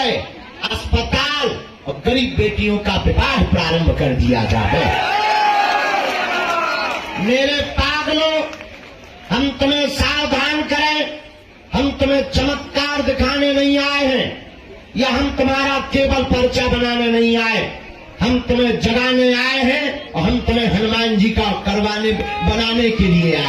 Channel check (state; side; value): identical; both; correlation 1.00